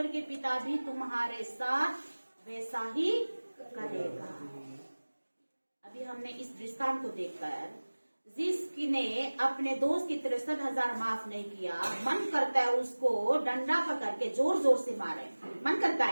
पिता भी तुम्हारे साथ वैसा ही करेगा। अभी हमने इस दृष्टांत को देखकर, जिसने अपने दोस्त की 63,000 माफ नहीं किया, मन करता है उसको डंडा पकड़ के जोर जोर से मारे, मन करता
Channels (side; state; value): both; inverted; correlation -1.00